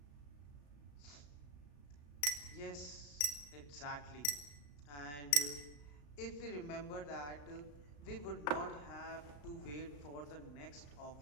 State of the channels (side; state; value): right; late; 34 ms